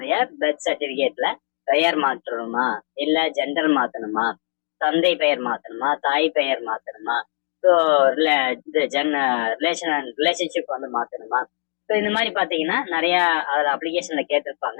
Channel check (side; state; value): right; silent; digital silence